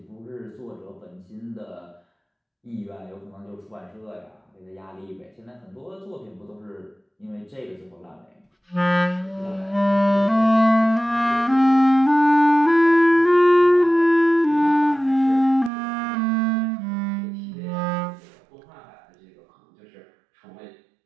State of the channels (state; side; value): drops out; left; at 15.7 s